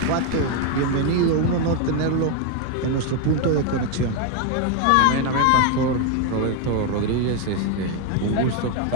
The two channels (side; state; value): both; different; correlation 0.01